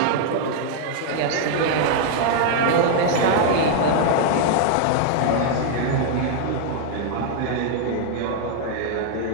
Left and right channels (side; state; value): both; different; correlation 0.00